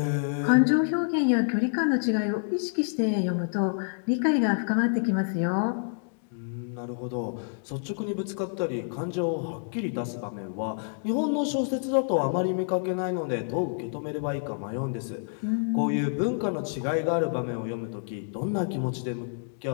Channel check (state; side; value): silent; right; digital silence